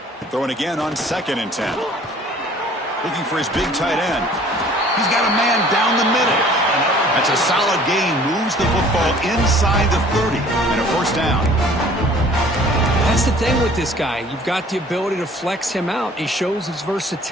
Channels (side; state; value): both; normal; correlation 0.52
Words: Throwing again on 2nd and 10. Looking for his big tight end. He's got a man down the middle. That's a solid gain. Moves the football inside the 30 and a first down. That's the thing with this guy. You've got the ability to flex him out. He shows his